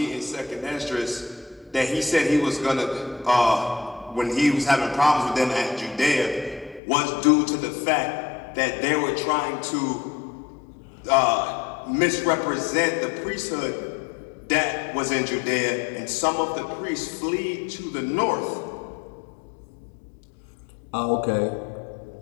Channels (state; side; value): drops out; right; at 6.8 s